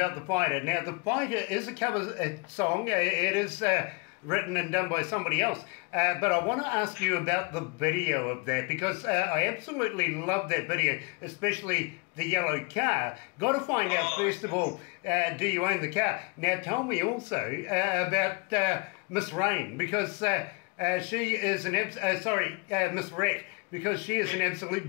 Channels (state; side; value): quieter; right; 30.7 dB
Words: The Fighter. Now, The Fighter is a cover song. It is written and done by somebody else. But I want to ask you about the video of that, because I absolutely love that video, especially the yellow car. Got to find out, first of all, do you own the car? Now tell me also about Miss Rain, because she is an Miss Rat, because she is an